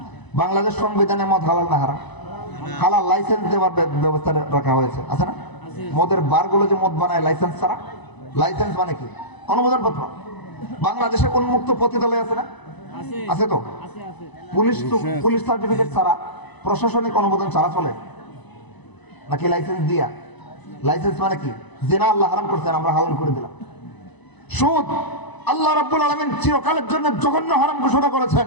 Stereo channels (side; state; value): right; late; 1.0 ms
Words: বাংলাদেশ সংবিধানে মদ হালাল না হারাম? হালাল লাইসেন্স দেওয়ার ব্যবস্থা রাখা হয়েছে, আছে না? মদের বারগুলো যে মদ বানায় লাইসেন্স ছাড়া, লাইসেন্স মানে কি? অনুমোদন পত্র। বাংলাদেশে উন্মুক্ত পতিতালয় আছে না? আছে তো। পুলিশ সার্টিফিকেট ছাড়া, প্রশাসনিক অনুমোদন ছাড়া চলে নাকি লাইসেন্স দিয়া? লাইসেন্স মানে কি? জিনা আল্লাহ হারাম করছেন, আমরা হালাল করে দিলাম। সুদ আল্লাহ রাব্বুল আলামিন চিরকালের জন্য জঘন্য হারাম ঘোষণা করেছেন।